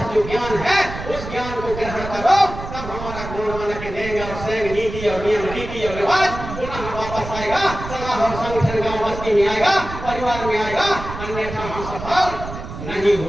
जो ज्ञान है उस ज्ञान को ग्रहण करो, तब हमारा गुणवान के देंगे और सैंग नीति और नियम रीति और रिवाज पुनः वापस आएगा, सलाह और संगठन गांव बस्ती में आएगा, परिवार में आएगा, अन्यथा हम सफल नहीं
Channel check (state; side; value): noise; right; rumble, 9 dB below the sound